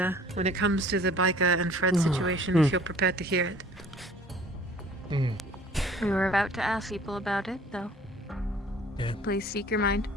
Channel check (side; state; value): both; normal; correlation 0.52